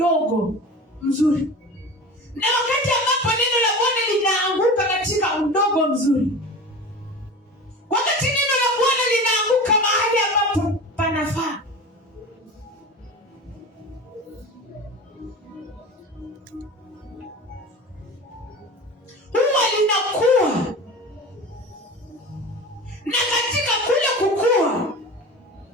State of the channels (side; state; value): both; normal; correlation 0.34